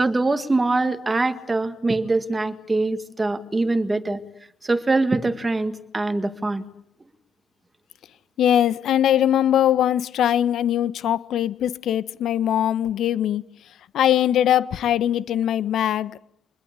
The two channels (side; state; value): right; quieter; 4.2 dB